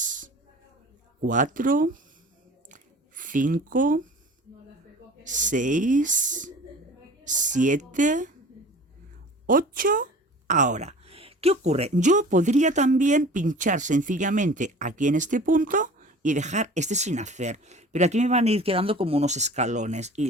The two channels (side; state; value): both; normal; correlation 0.43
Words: 4, 5, 6, 7, 8. Ahora, ¿qué ocurre? Yo podría también pinchar sencillamente aquí en este punto y dejar este sin hacer, pero aquí me van a ir quedando como unos escalones